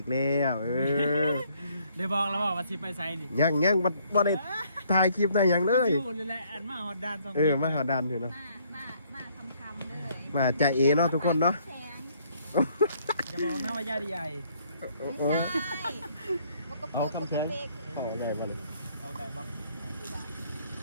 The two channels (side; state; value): both; inverted; correlation -0.66